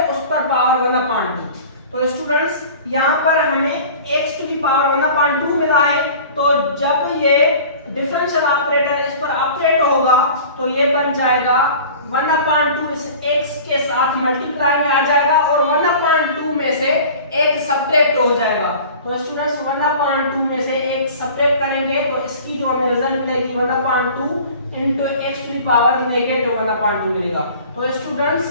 उस पर पावर 1/2। तो स्टूडेंट्स यहाँ पर हमें x टू द पावर 1/2 मिला है, तो जब ये डिफरेंशियल ऑपरेटर इस पर ऑपरेट होगा तो ये बन जाएगा 1/2 इस x के साथ मल्टीप्लाई में आ जाएगा और 1/2 में से एक सब्ट्रैक्ट हो जाएगा। तो स्टूडेंट्स 1/2 में से एक सब्ट्रैक्ट करेंगे तो इसकी जो हमें रिजल्ट मिलेगी 1/2 into x to the power negative 1/2 मिलेगा। तो स्टूडेंट्स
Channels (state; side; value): inverted; both; correlation -0.43